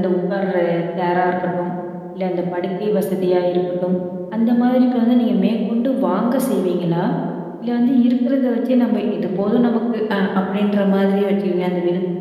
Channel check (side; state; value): both; identical; correlation 1.00